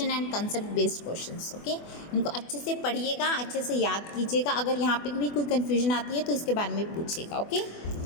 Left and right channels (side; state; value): right; late; 24 ms